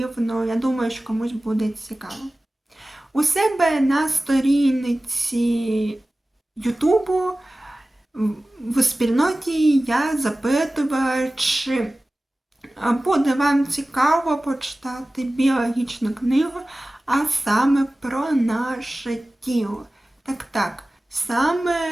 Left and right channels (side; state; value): both; normal; correlation 0.97